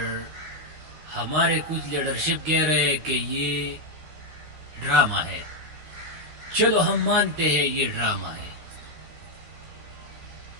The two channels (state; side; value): late; left; 13 ms